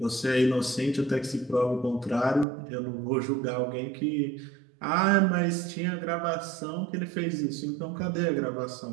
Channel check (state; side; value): drops out; left; at 2.5 s